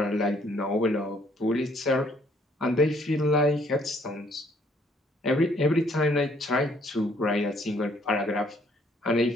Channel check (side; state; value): both; normal; correlation 0.65